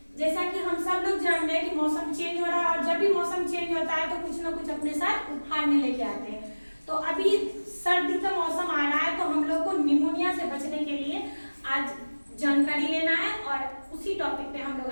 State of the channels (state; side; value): inverted; both; correlation -1.00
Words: जैसा कि हम सब लोग जान रहे हैं कि मौसम चेंज हो रहा है और जब भी मौसम चेंज होता है तो कुछ ना कुछ अपने साथ उखाड़ में लेके आते हैं। तो अभी सर्दी का मौसम आ रहा है तो हम लोग को निमोनिया से बचने के लिए आज जानकारी लेना है और उसी टॉपिक पे हम लोग